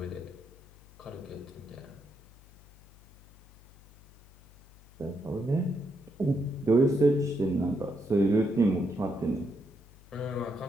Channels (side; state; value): left; noise; hum, 24 dB below the sound